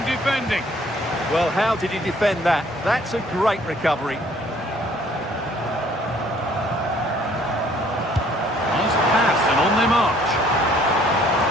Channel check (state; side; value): normal; both; correlation 0.60